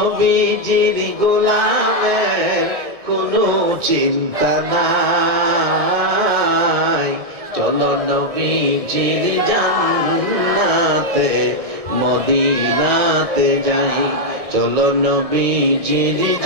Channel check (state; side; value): late; left; 1.7 ms